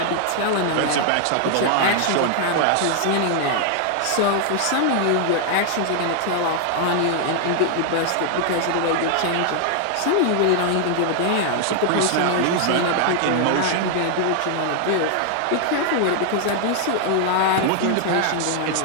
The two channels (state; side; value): different; both; correlation 0.00